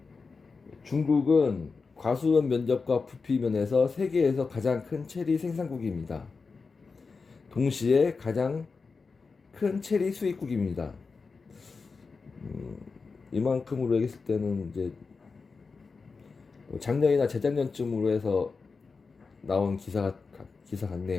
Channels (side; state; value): right; quieter; 4.6 dB